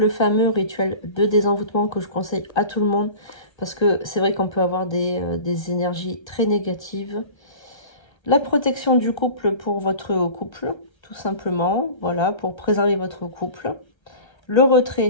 fameux rituel de désenvoûtement que je conseille à tout le monde parce que c'est vrai qu'on peut avoir des énergies très négatives. La protection du couple pour votre couple, tout simplement, voilà, pour préserver votre couple. Le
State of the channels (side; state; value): right; late; 1.3 ms